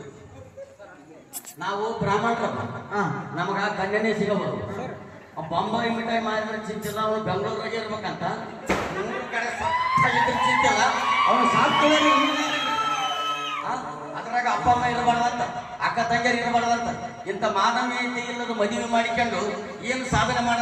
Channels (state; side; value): identical; both; correlation 1.00